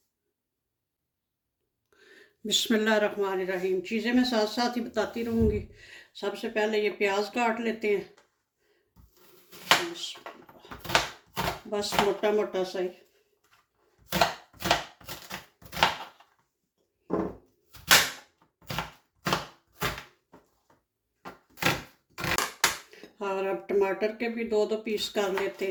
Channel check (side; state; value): both; identical; correlation 1.00